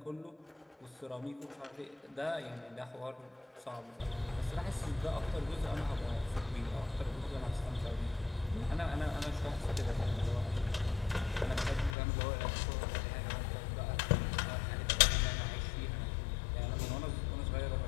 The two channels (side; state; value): right; drops out; at 12.0 s